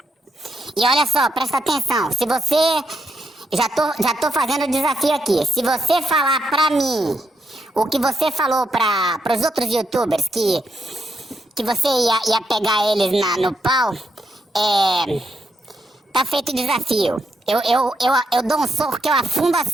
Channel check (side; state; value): both; normal; correlation 0.80